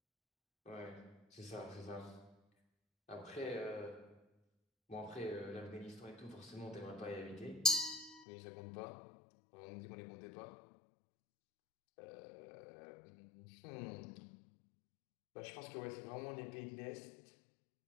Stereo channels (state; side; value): drops out; right; at 8.2 s